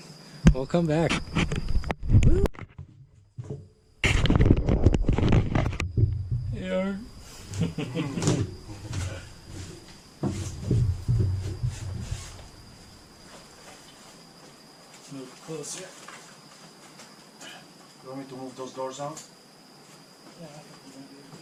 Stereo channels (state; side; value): identical; both; correlation 1.00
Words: We'll come back. Yeah. Move closer. You want me to move those doors out? Yeah.